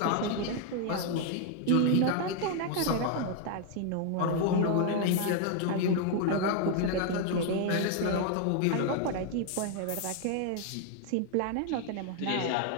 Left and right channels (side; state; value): both; different; correlation 0.00